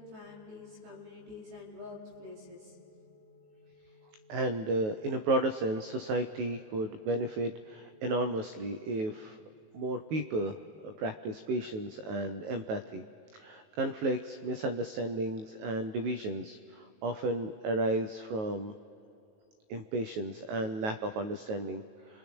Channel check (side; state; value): left; late; 19 ms